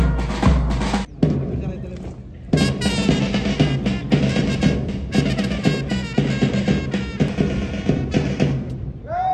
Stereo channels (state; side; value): identical; both; correlation 1.00